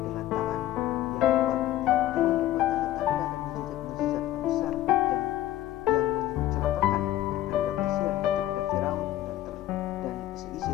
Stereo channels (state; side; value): quieter; right; 13.8 dB